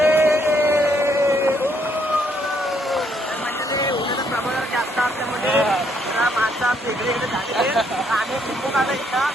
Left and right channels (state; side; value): normal; both; correlation 0.71